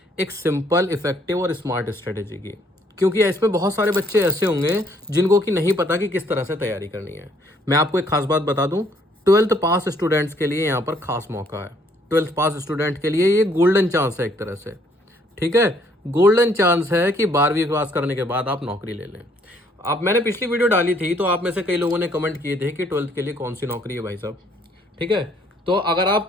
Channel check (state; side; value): normal; both; correlation 0.65